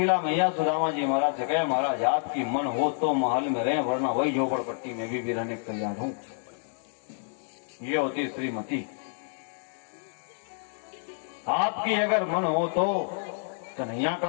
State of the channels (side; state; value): right; silent; 59 dB below the other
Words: मैया सुदामा जी महाराज से, कहे महाराज आपकी मन हो तो महल में रहे, वरना वही झोपड़पट्टी में भी रहने को तैयार हूं। ये होती श्रीमती। आपकी अगर मन हो तो कन्हैया